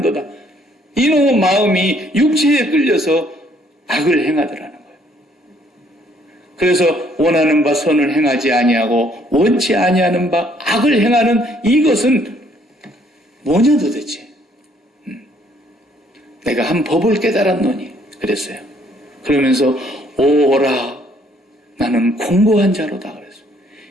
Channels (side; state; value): both; normal; correlation 0.65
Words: 이놈의 마음이 육체에 끌려서 악을 행하더라는 거예요. 그래서 원하는 바 선을 행하지 아니하고 원치 아니하는 바 악을 행하는 이것은 뭐냐 도대체. 내가 한 법을 깨달았노니 그랬어요. 그러면서 오라 나는 공고한 자로다 그랬어요.